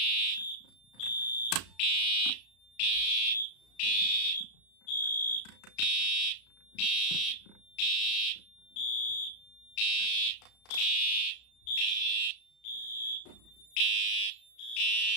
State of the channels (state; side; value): late; right; 34 ms